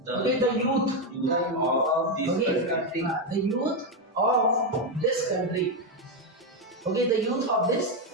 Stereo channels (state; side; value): normal; both; correlation 0.06